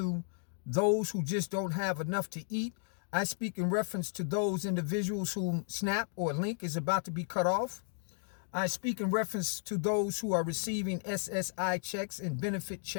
those who just don't have enough to eat. I speak in reference to those individuals whom SNAP or Link is about to be cut off. I speak in reference to those who are receiving SSI checks and benefit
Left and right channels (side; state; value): right; silent; 55 dB below the other